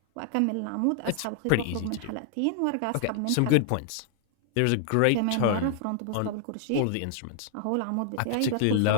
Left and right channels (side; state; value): both; different; correlation 0.00